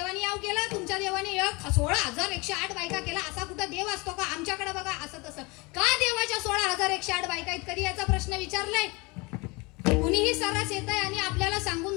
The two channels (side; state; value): right; quieter; 26.1 dB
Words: याव केला, तुमच्या देवाने 16,108 बायका केला. असा कुठं देव असतो का? आमच्याकडे बघा असं तसं. का देवाच्या 16,108 बायका आहेत? कधी याचा प्रश्न विचारलाय? कुणीही सरस येत आहे आणि आपल्याला सांगून